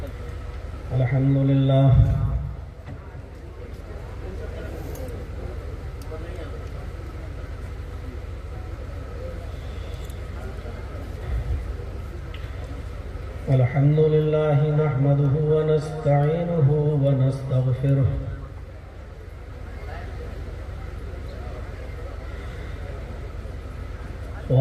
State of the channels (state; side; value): identical; both; correlation 1.00